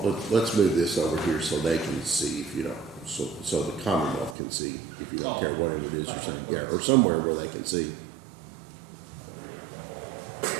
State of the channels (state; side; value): drops out; left; at 4.4 s